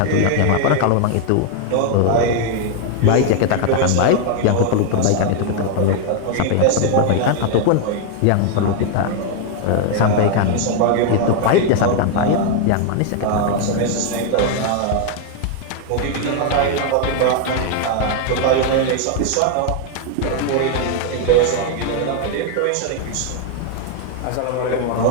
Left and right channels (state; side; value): different; both; correlation 0.00